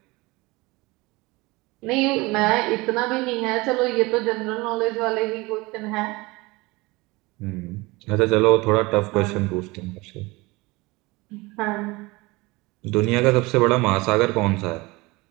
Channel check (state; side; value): quieter; left; 23.2 dB